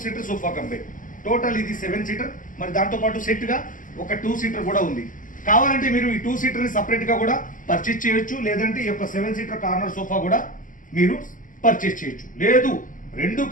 సీటర్ సోఫా కంపెనీ. టోటల్ ఇది 7 సీటర్. మరి దాంతోపాటు సెట్గా ఒక 2 సీటర్ కూడా ఉంది. కావాలంటే మీరు ఈ 2 సీటర్ని సపరేట్గా కూడా పర్చేజ్ చేయొచ్చు, లేదంటే ఈ యొక్క 7 సీటర్ కార్నర్ సోఫా కూడా మీరు పర్చేజ్ చేయొచ్చు. లేదు రెండు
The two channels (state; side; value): late; right; 0.38 ms